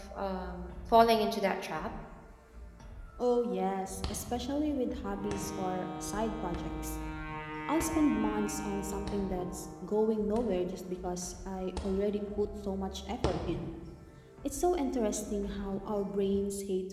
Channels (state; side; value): identical; both; correlation 1.00